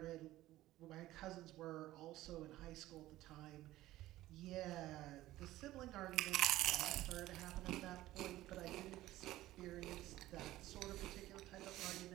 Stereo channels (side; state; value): left; quieter; 15.8 dB